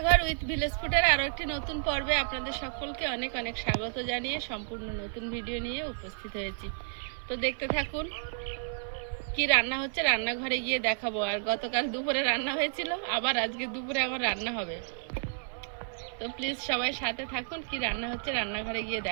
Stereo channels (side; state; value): left; silent; 57 dB below the other